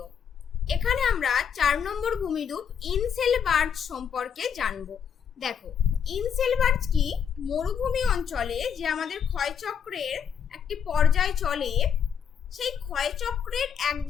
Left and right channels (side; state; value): right; quieter; 7.7 dB